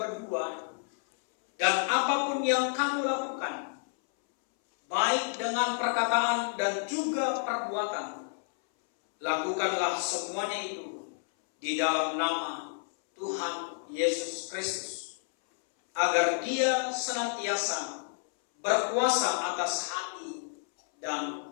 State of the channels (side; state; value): right; silent; 58 dB below the other